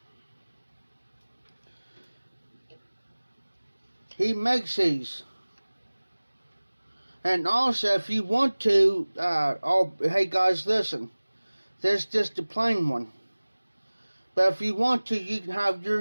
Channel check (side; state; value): both; inverted; correlation -1.00